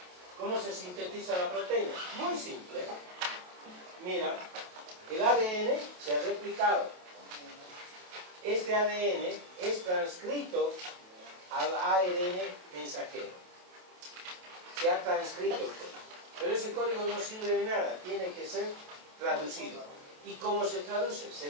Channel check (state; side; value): late; left; 28 ms